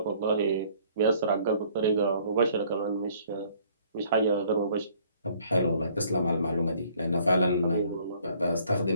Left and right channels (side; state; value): both; inverted; correlation -0.59